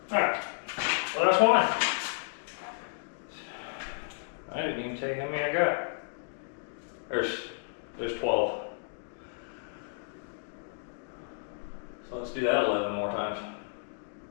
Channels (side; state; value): right; silent; digital silence